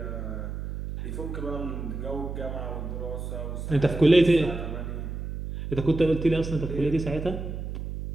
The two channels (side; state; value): right; noise; hum, 6 dB below the sound